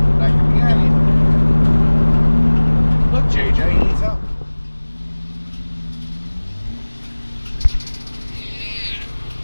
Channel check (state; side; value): inverted; both; correlation -1.00